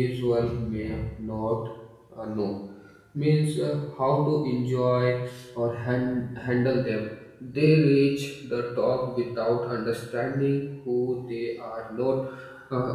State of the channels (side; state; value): both; identical; correlation 1.00